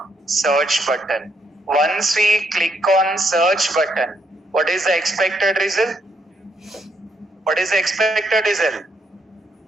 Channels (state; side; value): normal; both; correlation 0.75